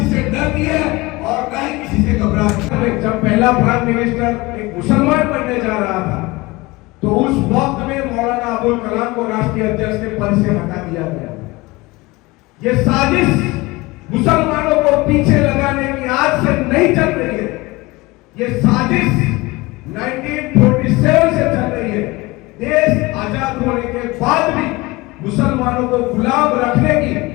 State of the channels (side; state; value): right; quieter; 22.3 dB